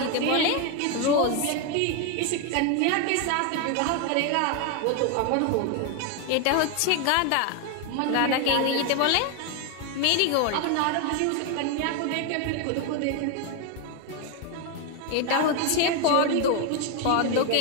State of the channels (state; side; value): different; both; correlation 0.01